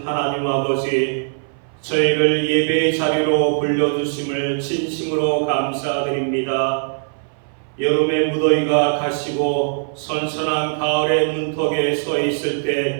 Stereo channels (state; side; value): silent; left; 59 dB below the other